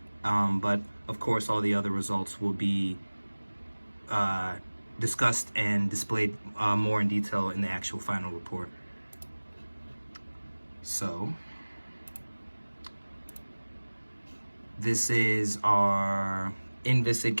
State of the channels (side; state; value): both; inverted; correlation -1.00